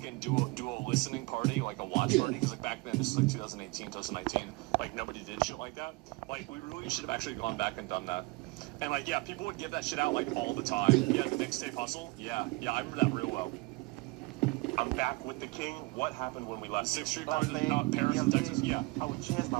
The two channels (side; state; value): left; quieter; 24.7 dB